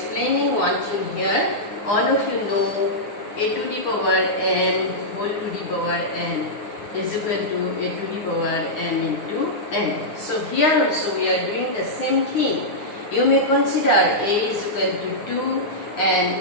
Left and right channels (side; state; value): right; late; 9.6 ms